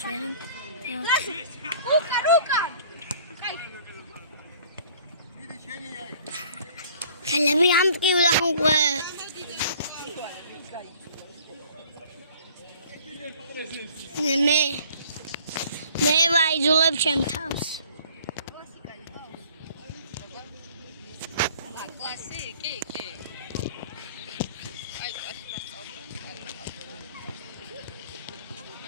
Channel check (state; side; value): inverted; both; correlation -0.53